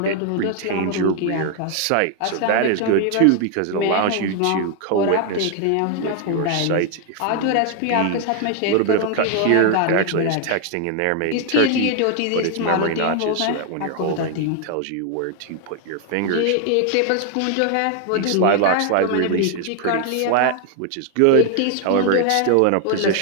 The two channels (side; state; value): both; different; correlation 0.00